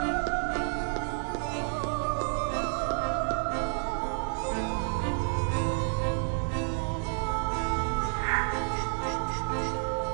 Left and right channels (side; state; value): left; silent; 58 dB below the other